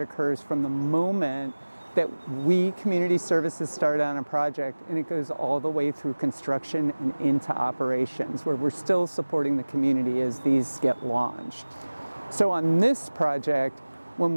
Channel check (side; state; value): both; inverted; correlation -1.00